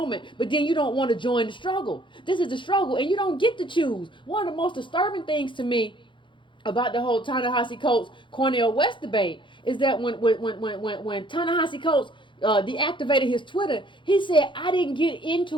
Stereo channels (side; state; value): right; late; 0.24 ms